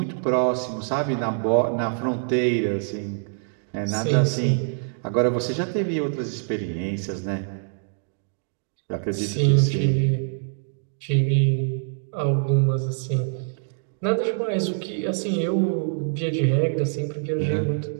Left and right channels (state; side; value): silent; left; digital silence